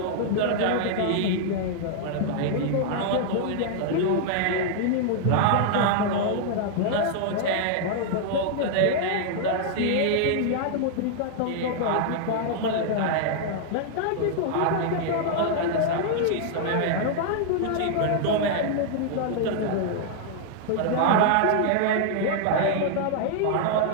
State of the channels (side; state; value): both; different; correlation -0.01